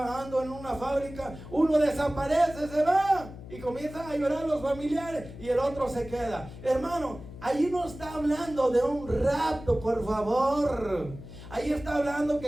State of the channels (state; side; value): noise; left; hum, 14 dB below the sound